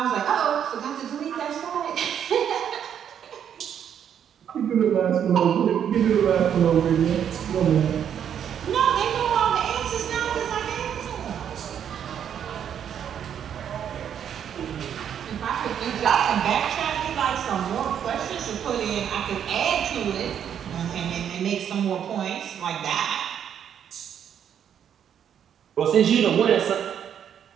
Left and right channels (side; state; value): left; quieter; 8.9 dB